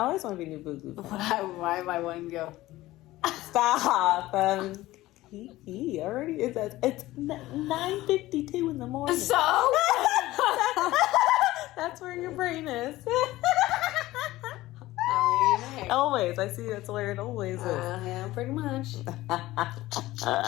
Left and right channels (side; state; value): right; quieter; 17.1 dB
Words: always want to be new boo boo. Why am I wanting to go? Stop. He already is. It's 9:52 in the morning. So? That's where your brain is. I mean, hey. Always. I see that's where it always is. Yeah, pretty much.